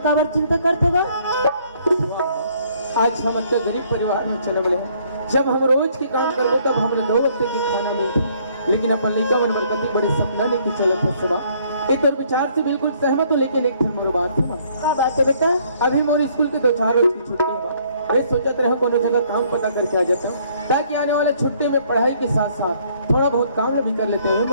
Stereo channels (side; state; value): both; inverted; correlation -0.64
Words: काबर चिंता करते हो? आज हम इतने गरीब परिवार में चले बड़े हैं, जब हम रोज की काम करबो तब हमें 2 वक्त की खाना मिलती, लेकिन अपन लड़का बन बरकती बड़े सपना लेके चलत है सुबह। एक तो विचार से बिल्कुल सहमत हूँ, लेकिन एक मोर बात है क्या बात है बेटा? अभी मोर स्कूल के 2-4 रोज की छुट्टी है। मैं सोचत रहा कोनो जगह काम पता करके आ जाता हूँ ताकि आने वाले छुट्टी में पढ़ाई के साथ साथ थोड़ा बहुत काम भी कर लेते हैं।